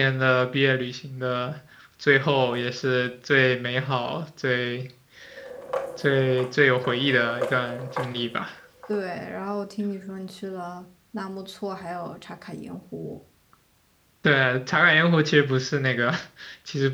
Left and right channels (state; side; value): identical; both; correlation 1.00